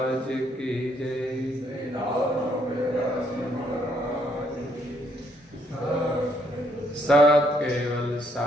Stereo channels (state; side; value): normal; both; correlation 0.71